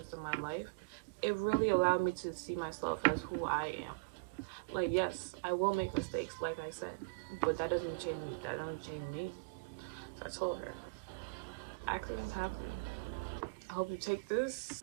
of my life, it really allowed me to see myself as who I am. Like, yes, I will make mistakes, like I said, but that doesn't change me. That doesn't change me. So I told her, accidents happen. I hope you take this,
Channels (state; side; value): quieter; left; 31.4 dB